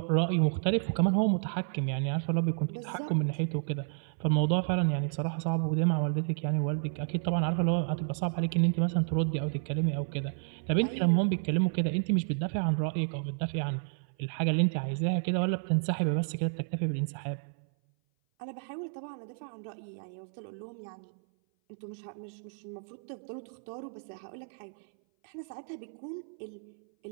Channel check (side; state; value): left; silent; 57 dB below the other